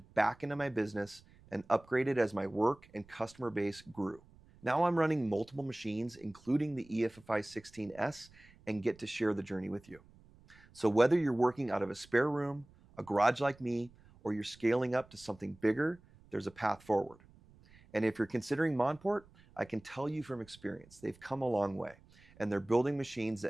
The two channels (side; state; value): right; noise; rumble, 26 dB below the sound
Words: back into my business, and upgraded as my work and customer base grew. Now I'm running multiple machines, including the EFFI16s, and get to share the journey with you. So whether you're working out of a spare room, a garage like me, or you're scaling up to something bigger, there's a path forward. And if you're considering Monport, I can tell you from experience, they've come a long way, and they're building machines